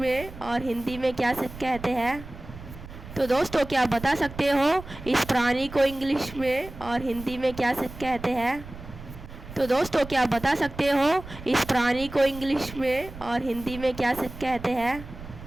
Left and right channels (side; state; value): right; noise; rumble, 14 dB below the sound